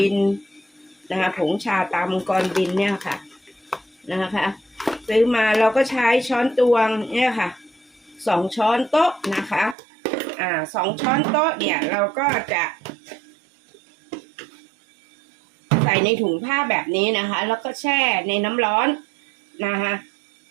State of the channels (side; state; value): left; drops out; at 9.8 s